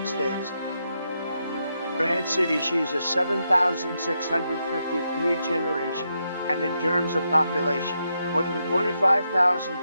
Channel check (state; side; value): inverted; both; correlation -0.82